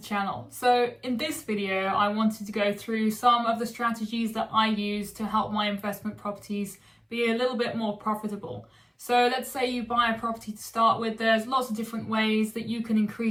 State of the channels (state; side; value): identical; both; correlation 1.00